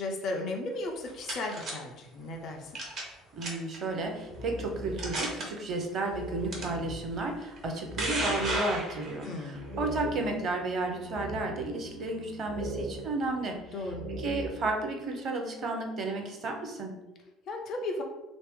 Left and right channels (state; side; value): normal; both; correlation 0.48